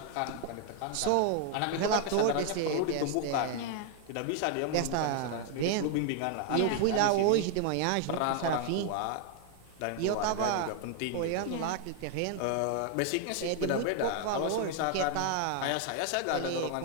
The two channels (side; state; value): both; different; correlation 0.00